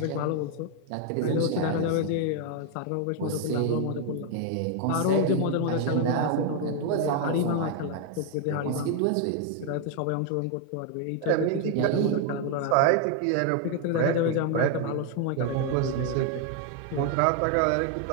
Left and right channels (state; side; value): different; both; correlation 0.00